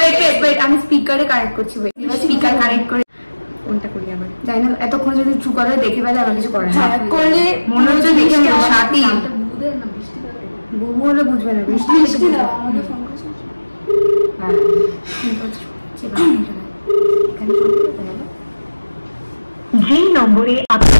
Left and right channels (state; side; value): inverted; both; correlation -1.00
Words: আমি স্পিকারে কানেক্ট করছি, স্পিকার কানেক্ট করে ফোনটা করি। আবার জানি না, এতক্ষণ যদি চুপ করে দেখে ফেলে আমার কিছু করে না, করলে মনে হচ্ছে দেখে সাথী বুবু হলে বুঝবে না। বৃষ্টি বৃষ্টি দাও আমাকে ফোন করছে। হ্যাঁ, যে নম্বরে আপনি